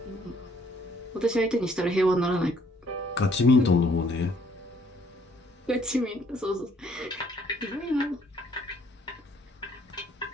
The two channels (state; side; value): normal; both; correlation 0.64